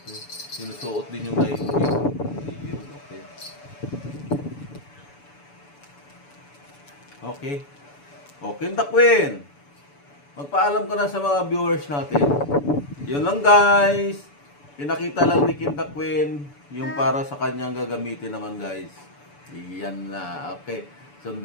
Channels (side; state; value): right; late; 7.0 ms